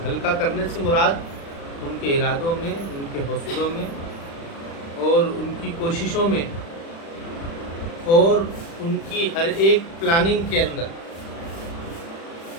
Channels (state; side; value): late; right; 36 ms